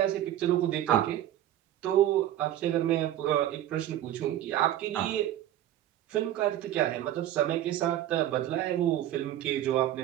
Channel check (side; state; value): left; quieter; 12.6 dB